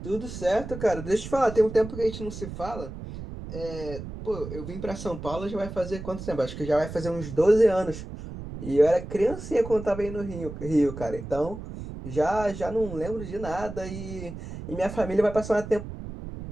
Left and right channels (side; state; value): right; noise; rumble, 10 dB below the sound